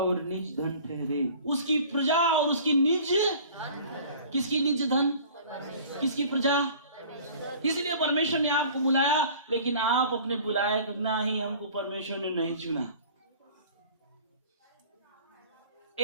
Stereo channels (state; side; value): inverted; both; correlation -0.46